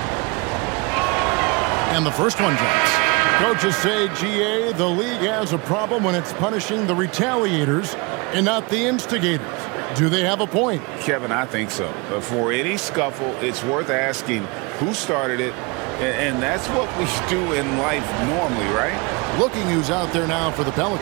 And the first one drops. Coaches say, GA, the league has a problem when it's punishing the retaliators and not the instigators. Do they have a point? Kevin, I think so. But for any scuffle, it's worth asking who started it, and that's what we do in life normally, right? Looking who's out there now for the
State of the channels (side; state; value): left; quieter; 28.0 dB